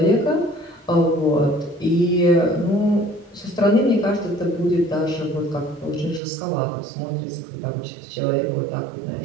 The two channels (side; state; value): left; drops out; at 6.2 s